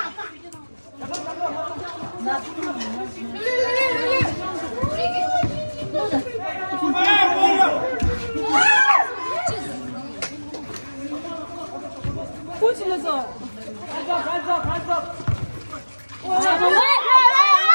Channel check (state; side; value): inverted; both; correlation -1.00